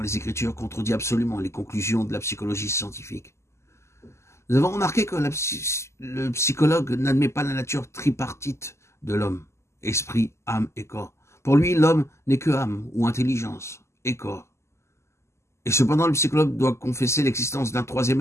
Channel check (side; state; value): right; late; 0.13 ms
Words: les Écritures contredit absolument les conclusions de la psychologie scientifique. Nous avons remarqué que le psychologue n'admet pas la nature tripartite de l'homme, esprit, âme et corps. Pour lui, l'homme n'est que âme ou intelligence et corps. Et cependant, le psychologue doit confesser l'existence d'un troisième